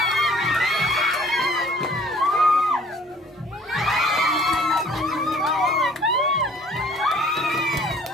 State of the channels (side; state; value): both; normal; correlation 0.54